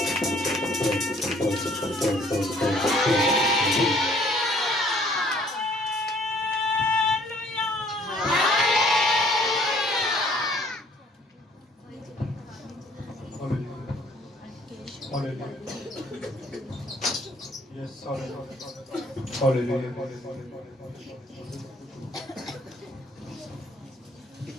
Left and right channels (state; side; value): normal; both; correlation 0.59